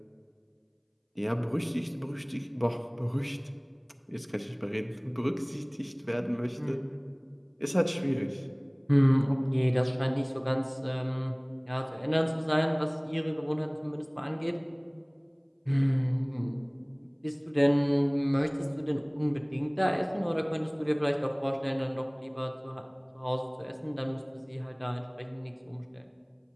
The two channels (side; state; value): both; identical; correlation 1.00